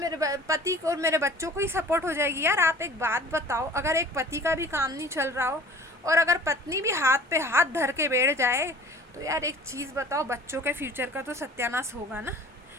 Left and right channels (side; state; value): both; normal; correlation 0.46